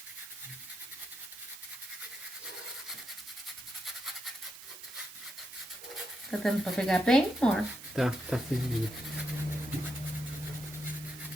Tá dando pra pegar bem, amor? Tá servindo.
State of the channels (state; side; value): noise; right; hiss, 14 dB below the sound